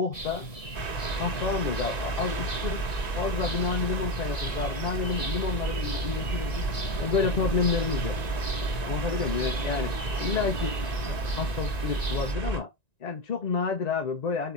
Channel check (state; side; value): late; right; 1.9 ms